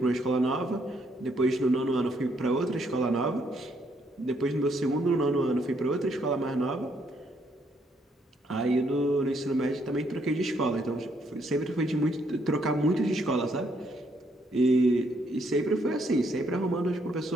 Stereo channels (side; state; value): both; normal; correlation 0.72